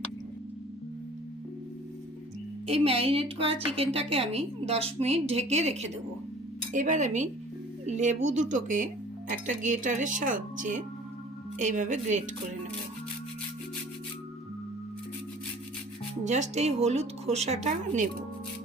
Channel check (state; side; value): normal; both; correlation 0.48